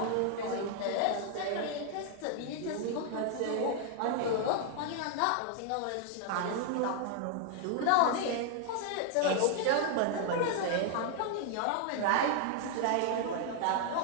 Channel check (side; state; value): both; different; correlation 0.00